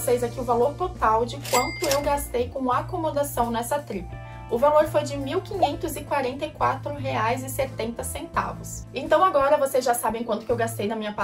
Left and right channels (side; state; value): both; identical; correlation 1.00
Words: aqui o valor total de quanto eu gastei com acomodação nessa trip. O valor foi de R$ 1.544,70. Então agora vocês já sabem quanto que eu gastei na minha